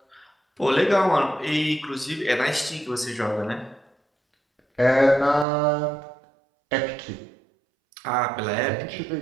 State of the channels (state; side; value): drops out; left; at 5.5 s